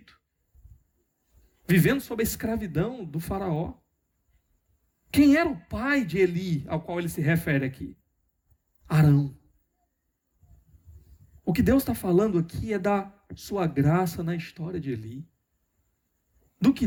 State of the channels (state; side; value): identical; both; correlation 1.00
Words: vivendo sob a escravidão do Faraó. Quem era o pai de Eli, ao qual ele se refere aqui? Arão. O que Deus está falando aqui é da sua graça na história de Eli. Do que